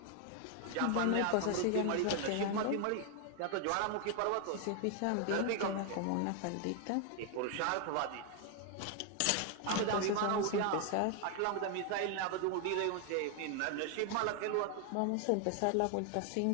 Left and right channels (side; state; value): both; different; correlation 0.00